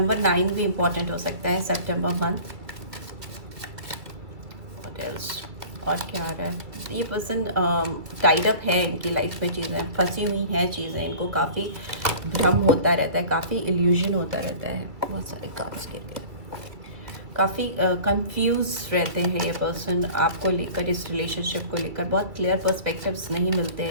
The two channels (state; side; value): late; left; 2.3 ms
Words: 9 भी इम्पॉर्टेंट हो सकता है, सितंबर मंथ। व्हाट एल्स, और क्या आ रहा है, ये पर्सन टाइड अप है, इनकी लाइफ में चीज़ें फंसी हुई हैं, चीज़ें इनको काफ़ी भ्रम होता रहता है, काफ़ी इल्यूजन होता रहता है, बहुत सारे कार्ड्स के लिए काफ़ी कंफ्यूज रहते हैं ये पर्सन आपको लेकर, इस रिलेशनशिप को लेकर बहुत क्लियर पर्सपेक्टिव्स नहीं मिलते